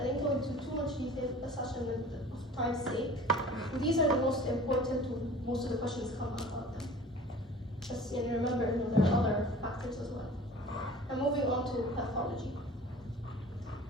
didn't go into too much detail for the session of time's sake. These are the most important. Most of the questions come about them. Just remember, there are other factors as well. And moving on to pathology.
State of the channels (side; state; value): both; normal; correlation 0.44